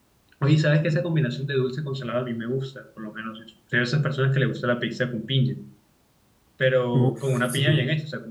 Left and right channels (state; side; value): identical; both; correlation 1.00